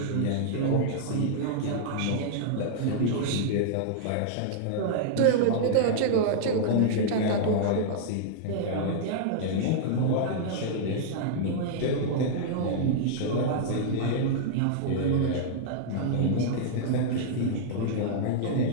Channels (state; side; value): different; both; correlation -0.01